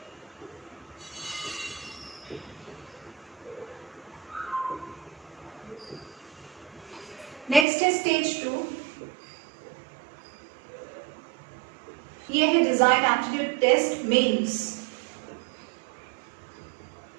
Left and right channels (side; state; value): left; drops out; at 7.7 s